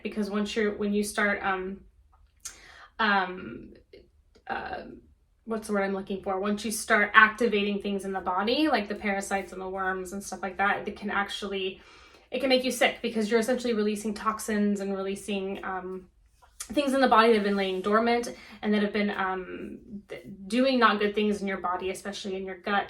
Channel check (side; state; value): both; identical; correlation 1.00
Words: because when you start, what's the word I'm looking for? Once you start activating things in the body, like the parasites and the worms and stuff like that, it can make you sick because you're essentially releasing toxins and releasing, things in the body that have been laying dormant and that have been doing not good things in your body, especially in your gut